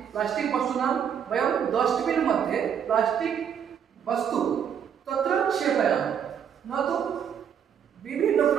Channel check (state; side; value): quieter; left; 8.2 dB